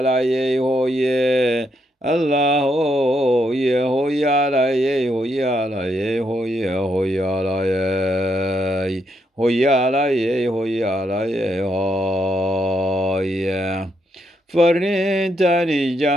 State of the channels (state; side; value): normal; both; correlation 0.78